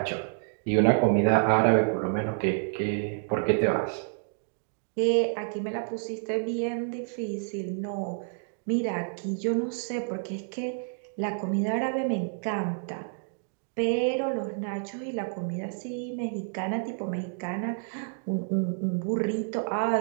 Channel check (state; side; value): silent; left; digital silence